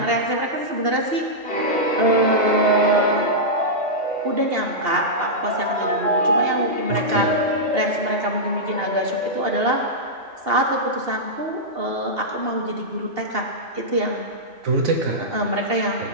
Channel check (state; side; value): late; left; 2.8 ms